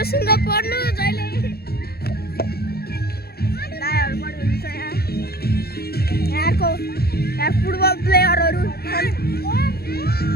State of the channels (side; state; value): right; late; 0.46 ms